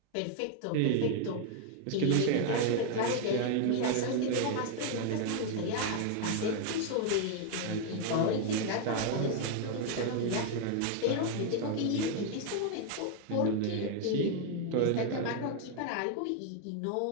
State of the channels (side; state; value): both; different; correlation 0.00